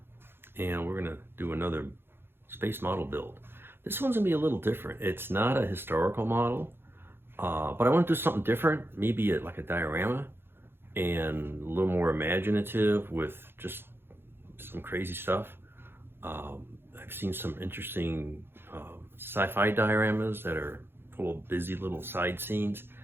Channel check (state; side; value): late; left; 0.11 ms